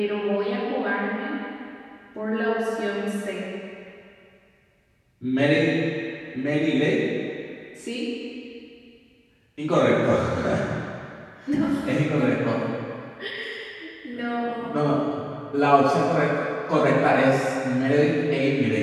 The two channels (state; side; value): identical; both; correlation 1.00